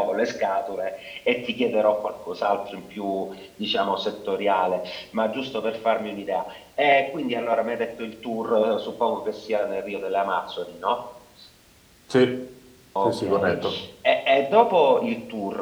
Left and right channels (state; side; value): identical; both; correlation 1.00